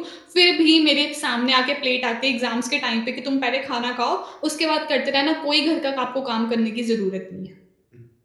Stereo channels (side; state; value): both; identical; correlation 1.00